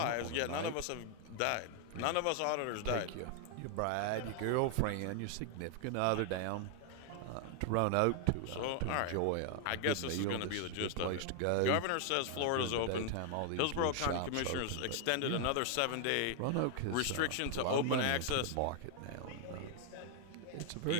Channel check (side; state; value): both; different; correlation 0.00